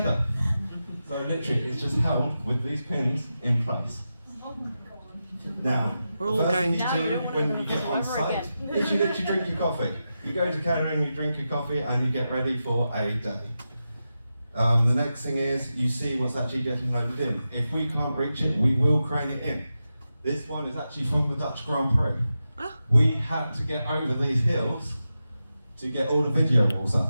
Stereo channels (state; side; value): inverted; both; correlation -0.90